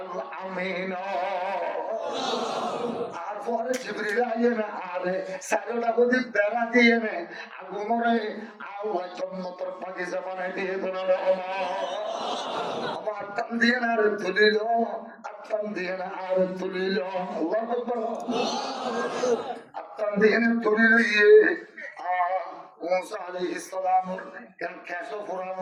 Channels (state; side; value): identical; both; correlation 1.00